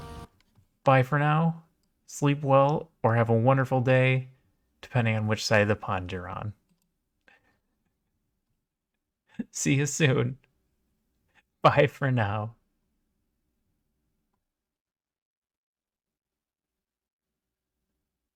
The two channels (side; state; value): both; identical; correlation 1.00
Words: Bye for now. Sleep well or have a wonderful day, depending on which side of the pond you're on. See you soon. Bye for now.